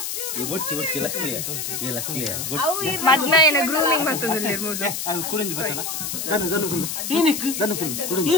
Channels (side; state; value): left; noise; hiss, 4 dB below the sound